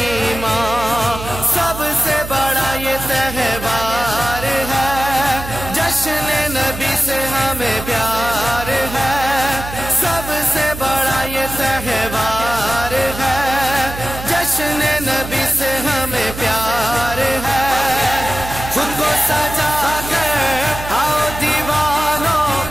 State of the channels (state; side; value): noise; right; hum, 10 dB below the sound